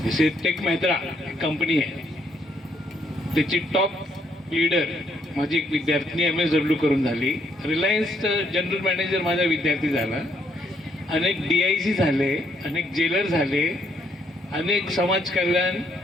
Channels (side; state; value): both; normal; correlation 0.72